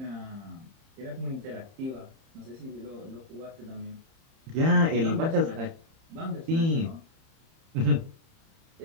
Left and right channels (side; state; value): left; late; 30 ms